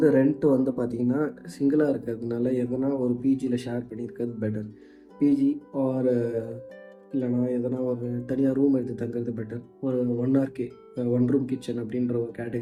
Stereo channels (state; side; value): identical; both; correlation 1.00